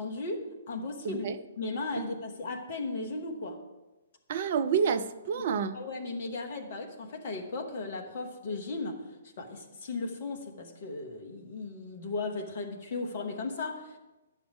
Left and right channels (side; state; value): both; inverted; correlation -0.52